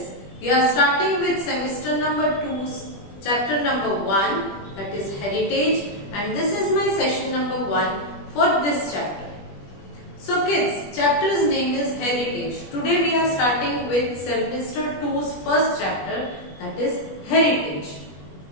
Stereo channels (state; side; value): late; right; 20 ms